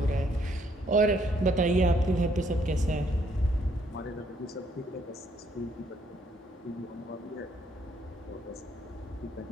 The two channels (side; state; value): both; normal; correlation 0.69